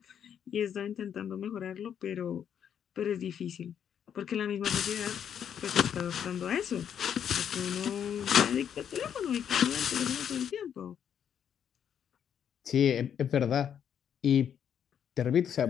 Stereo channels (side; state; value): right; quieter; 8.7 dB